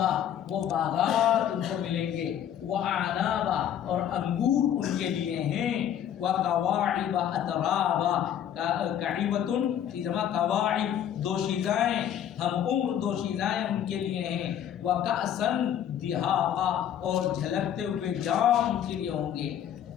وہ باغات ان کو ملیں گے، واعنابا اور انگور ان کے لیے ہیں، وکواعب اترابا، کعیبۃ کی جمع کواعب دوشیزائیں، ہم عمر دوشیزائیں ان کے لیے ہیں، وکأسا دہاقا اور جھلکتے ہوئے جام ان کے لیے ہوں گے۔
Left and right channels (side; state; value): right; quieter; 10.0 dB